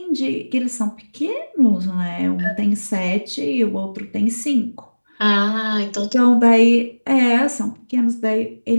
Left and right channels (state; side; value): inverted; both; correlation -1.00